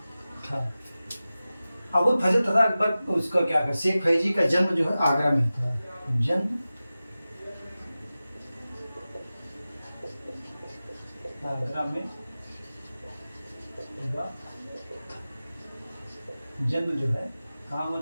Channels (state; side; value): inverted; both; correlation -0.95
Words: था। अबुल फजल तथा अकबर उसका क्या कर, शेख फैजी का जन्म जो है आगरा में था। जन्म आगरा में हुआ, जन्म जो है कहाँ हुआ